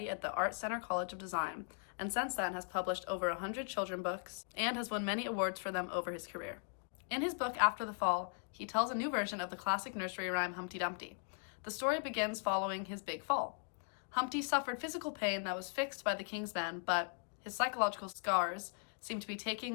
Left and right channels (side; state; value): right; silent; 52 dB below the other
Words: at the Art Center College of Design, and since then has published over 100 children's books and has won many awards for them over his career. In his book After the Fall, he tells a new version of the classic nursery rhyme Humpty Dumpty. The story begins following his big fall. Humpty suffered physical pain that was fixed by the king's men, but his psychological scars seem to be